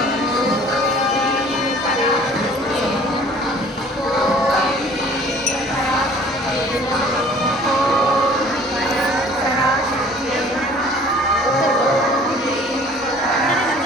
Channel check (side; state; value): both; normal; correlation 0.51